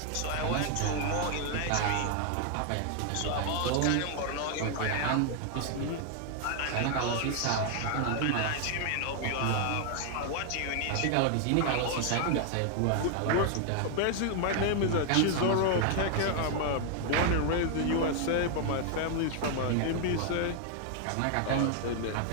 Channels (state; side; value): different; both; correlation 0.00